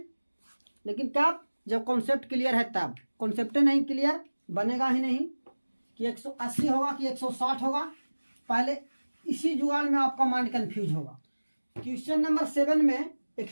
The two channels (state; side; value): inverted; both; correlation -1.00